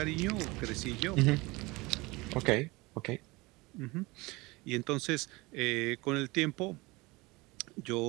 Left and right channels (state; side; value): quieter; left; 23.2 dB